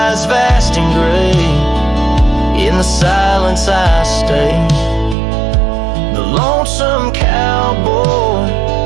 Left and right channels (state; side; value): drops out; left; at 5.2 s